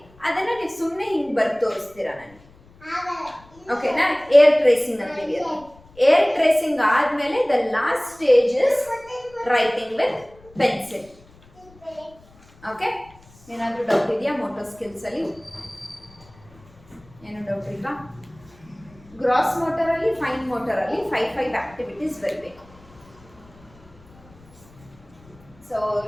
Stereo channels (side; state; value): left; noise; rumble, 26 dB below the sound